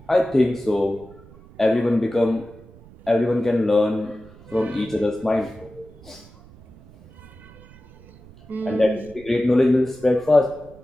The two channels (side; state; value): right; noise; rumble, 23 dB below the sound